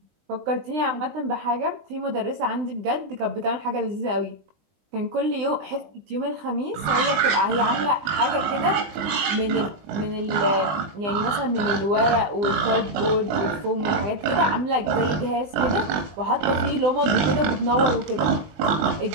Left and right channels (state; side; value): late; left; 20 ms